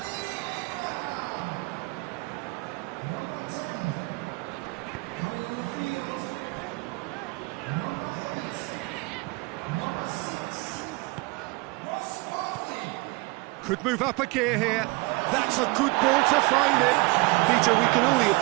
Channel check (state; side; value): quieter; left; 25.5 dB